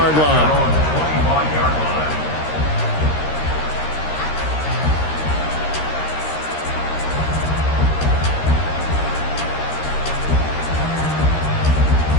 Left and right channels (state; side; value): late; right; 13 ms